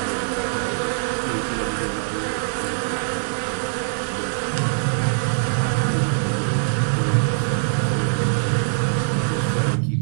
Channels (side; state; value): left; silent; 62 dB below the other